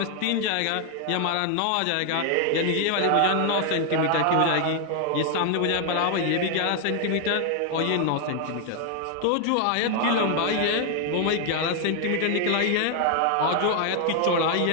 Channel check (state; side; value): different; both; correlation 0.00